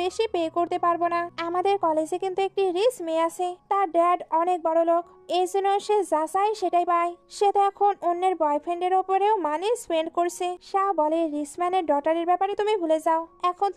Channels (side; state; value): both; identical; correlation 1.00